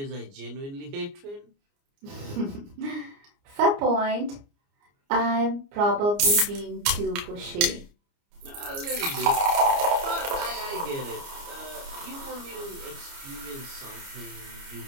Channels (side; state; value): left; late; 29 ms